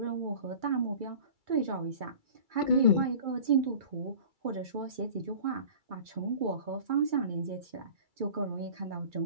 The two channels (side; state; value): left; late; 2.3 ms